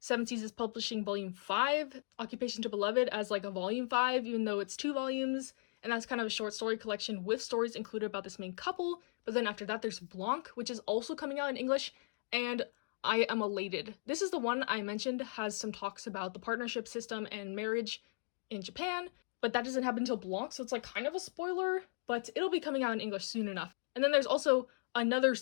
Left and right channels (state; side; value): silent; right; digital silence